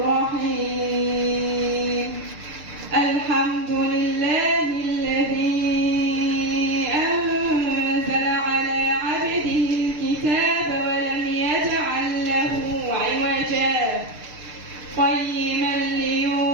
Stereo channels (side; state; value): left; late; 6.7 ms